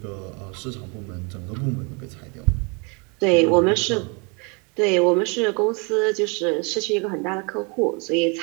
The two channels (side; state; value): left; quieter; 32.4 dB